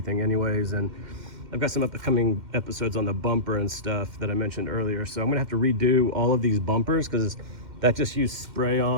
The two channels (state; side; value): late; left; 2.1 ms